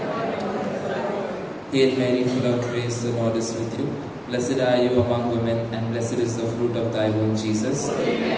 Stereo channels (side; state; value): both; identical; correlation 1.00